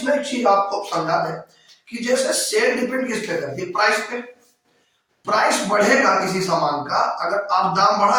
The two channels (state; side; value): identical; both; correlation 1.00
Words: एक चीज आपको समझा दें कि जैसे सेल डिपेंड किस पे करती है? प्राइस पे। प्राइस बढ़ेगा किसी सामान का, अगर आप दाम